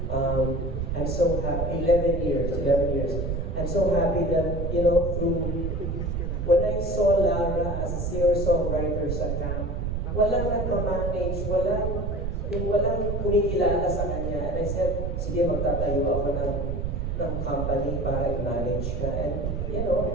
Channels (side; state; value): right; noise; rumble, 2 dB below the sound